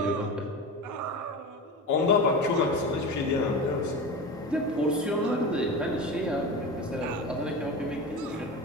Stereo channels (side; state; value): both; normal; correlation 0.26